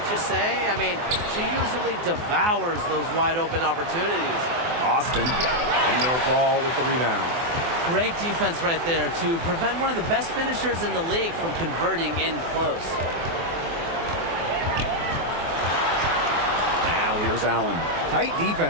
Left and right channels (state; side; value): late; left; 24 ms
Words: you say? I mean, she usually devours those wide open opportunities. Austin. Indoor fall with the rebound. Great defense right there to prevent one of the best finishers in the league from converting in close. Now here's Allen. Tight